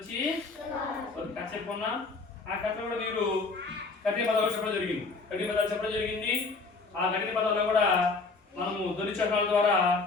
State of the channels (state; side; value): quieter; right; 4.0 dB